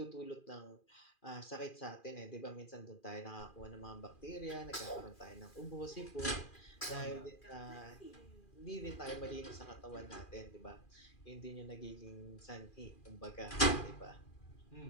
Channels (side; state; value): right; late; 2.4 ms